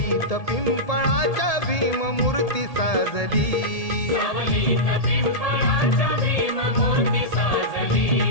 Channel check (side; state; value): right; late; 1.8 ms